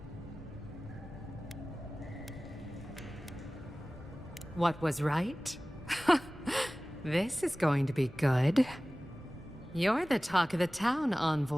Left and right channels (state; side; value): noise; left; rumble, 24 dB below the sound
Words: What was right? This is going to be good. You're the talk of the town,